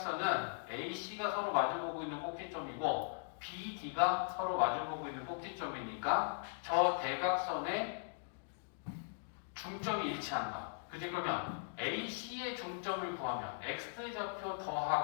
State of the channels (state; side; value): silent; right; digital silence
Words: A, C가 서로 마주보고 있는 꼭지점이고 B, D가 서로 마주보고 있는 꼭지점이니까 저 대각선의 중점이 일치한다. 그지? 그러면 AC의 중점을 구하면 X좌표